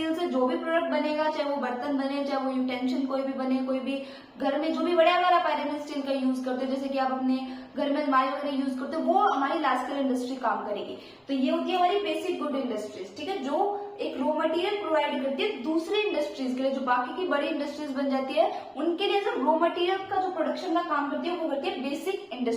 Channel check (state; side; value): identical; both; correlation 1.00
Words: से जो भी प्रोडक्ट बनेगा, चाहे वो बर्तन बने, चाहे वो यूटेंशन कोई भी बने, कोई भी घर में जो भी बड़े अगर आप आयरन एंड स्टील का यूज करते हो, जैसे कि आप अपने घर में अलमारी वगैरह यूज करते हो, वो हमारी लार्ज स्केल इंडस्ट्री काम करेगी। तो ये होती है हमारी बेसिक गुड इंडस्ट्रीज, ठीक है, जो एक रॉ मटेरियल प्रोवाइड करती है दूसरी इंडस्ट्रीज के लिए, जो बाकी की बड़ी इंडस्ट्रीज बन जाती है उनके लिए जो रॉ मटेरियल का जो प्रोडक्शन का काम करती है वो करती है बेसिक